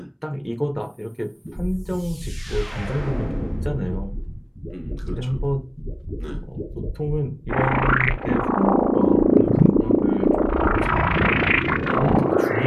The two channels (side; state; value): both; identical; correlation 1.00